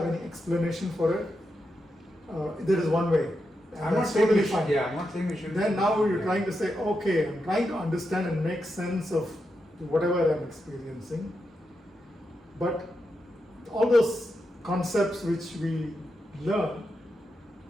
any explanation for it. There is one way. I'm not saying we should. Yeah, I'm not saying we should. Then now you're trying to say, okay, I'm trying to understand and make sense of whatever I'm experiencing. But all those concepts which we learn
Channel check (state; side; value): normal; both; correlation 0.86